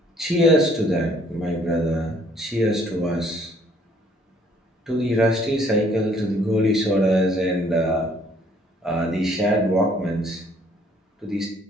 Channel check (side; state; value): both; normal; correlation 0.62